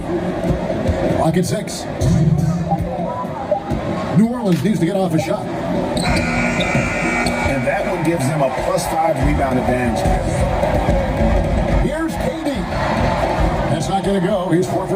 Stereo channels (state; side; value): identical; both; correlation 1.00